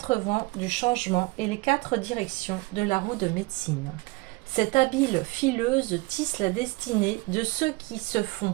vents du changement et les 4 directions de la roue de médecine. Cette habile fileuse tisse la destinée de ceux qui se font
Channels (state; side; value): quieter; left; 23.6 dB